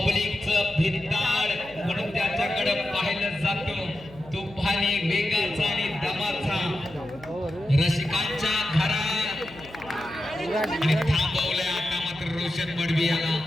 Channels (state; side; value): noise; left; hum, 20 dB below the sound